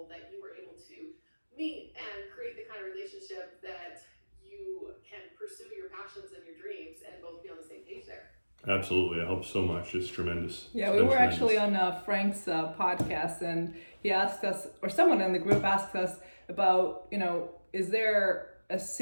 that you were able to meet and create the kind of relationship that you can pursue your passions and your dreams and both be on the same page there. Absolutely. It helps so much. It's tremendous. Yeah, we were actually on Frank's podcast, and he asked us, or someone in the group asked us about, is there a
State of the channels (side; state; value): both; inverted; correlation -1.00